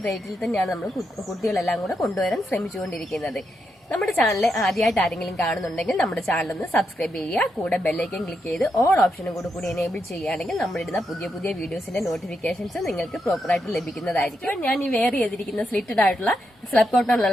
റേറ്റിൽ തന്നെയാണ് നമ്മൾ കുട്ടികളെല്ലാം കൂടെ കൊണ്ടുവരാൻ ശ്രമിച്ചുകൊണ്ടിരിക്കുന്നത്. നമ്മുടെ ചാനൽ ആദ്യമായിട്ട് ആരെങ്കിലും കാണുന്നുണ്ടെങ്കിൽ നമ്മുടെ ചാനൽ ഒന്ന് സബ്സ്ക്രൈബ് ചെയ്യുക. കൂടെ ബെല്ലൈക്കൻ ക്ലിക്ക് ചെയ്ത് ഓൾ ഓപ്ഷനും കൂടി എനേബിൾ ചെയ്യുകയാണെങ്കിൽ നമ്മളിടുന്ന പുതിയ വീഡിയോസിന്റെ നോട്ടിഫിക്കേഷൻസ് നിങ്ങൾക്ക് പ്രോപ്പറായിട്ട് ലഭിക്കുന്നതായിരിക്കും. ഞാൻ ഈ വെയർ ചെയ്തിരിക്കുന്ന സ്ലിറ്റഡ് ആയിട്ടുള്ള സ്ലബ്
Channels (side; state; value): both; normal; correlation 0.83